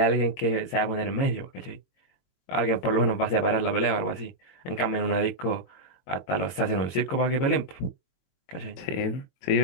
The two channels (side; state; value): right; late; 22 ms